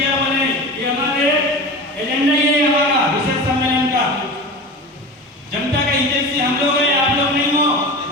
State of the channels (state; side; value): normal; both; correlation 0.31